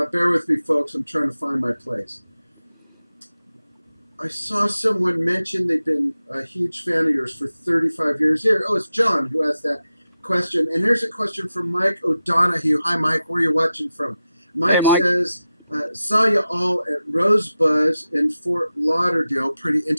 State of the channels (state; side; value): inverted; both; correlation -0.93